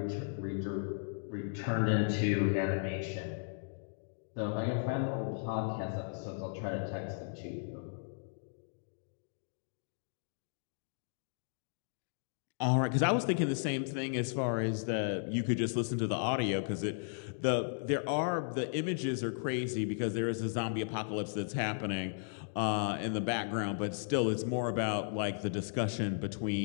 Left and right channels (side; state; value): right; silent; digital silence